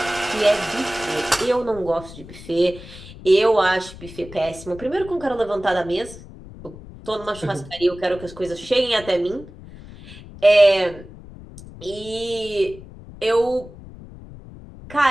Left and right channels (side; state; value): left; noise; rumble, 17 dB below the sound